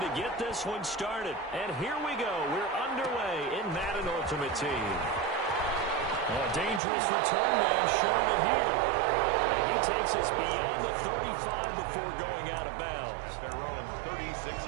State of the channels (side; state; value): left; drops out; at 6.8 s